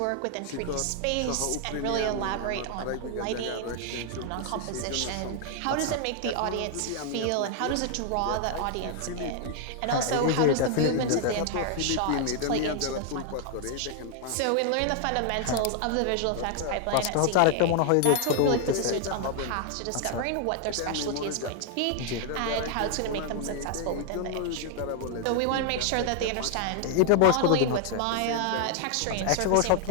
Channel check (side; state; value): both; different; correlation 0.00